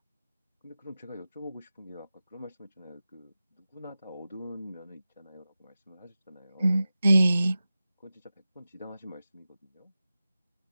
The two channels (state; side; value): inverted; both; correlation -0.95